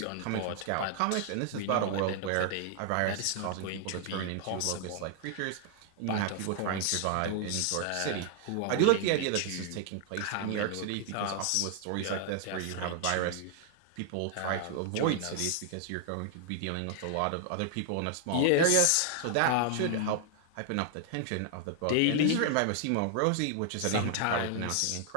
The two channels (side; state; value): both; different; correlation 0.00